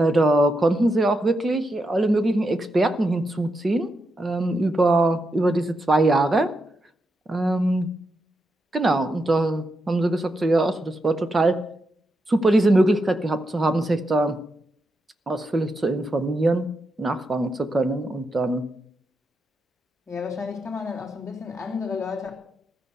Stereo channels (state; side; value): normal; both; correlation 0.84